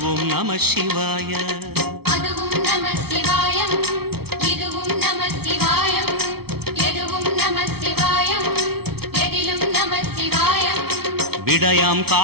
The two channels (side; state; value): left; late; 0.95 ms